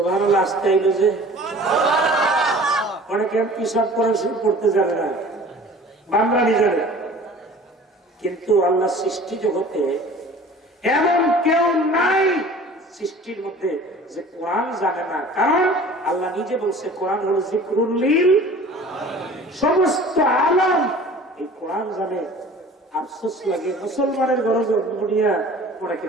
আসতে আইলো যে, অনেকে পিসাব কোরআন শরীফ পড়তে জানে না, বাংলানি জানে। কিন্তু আল্লাহ সৃষ্টি জগতে এমন কেউ নাই সৃষ্টির মধ্যে যে কোরআন জানে না, কারণ আল্লাহ নিজে বলছে কোরআন হলো জিকরুল লিল সমস্ত আলম। এই কোরআন জানে। আফসোস লাগে মুসলমানের গরজ দুনিয়া ওনাকে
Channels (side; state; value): both; normal; correlation 0.45